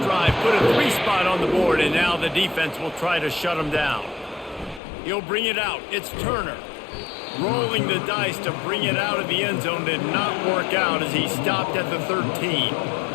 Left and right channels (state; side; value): drops out; right; at 4.8 s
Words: Put a 3 spot on the board, and now the defense will try to shut him down. He'll bring it out. It's Turner. Rolling the dice to bring it out of the end zone did not work out as he stopped at the 13.